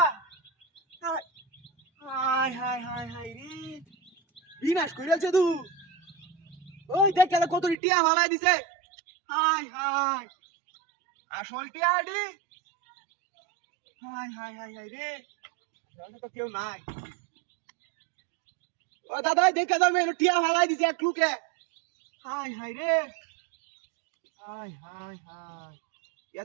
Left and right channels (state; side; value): drops out; left; at 7.8 s